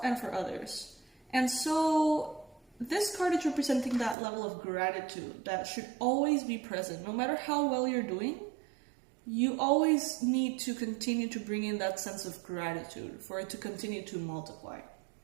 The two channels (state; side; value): drops out; left; at 4.2 s